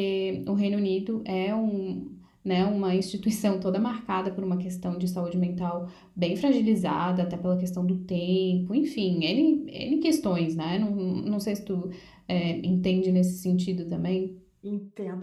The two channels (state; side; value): identical; both; correlation 1.00